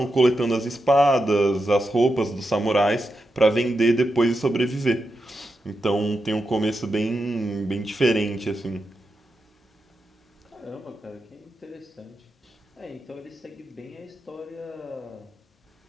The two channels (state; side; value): normal; both; correlation 0.88